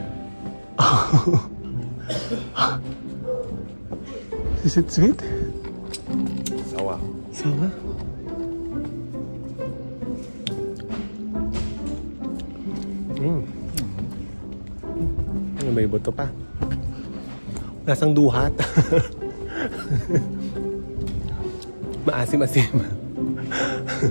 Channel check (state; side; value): inverted; both; correlation -1.00